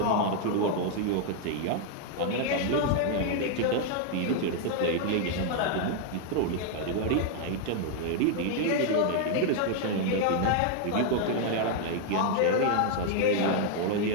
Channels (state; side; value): different; both; correlation 0.00